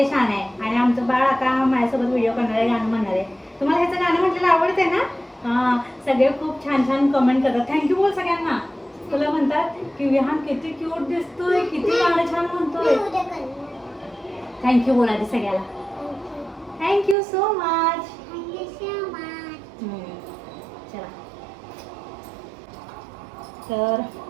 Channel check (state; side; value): drops out; left; at 17.2 s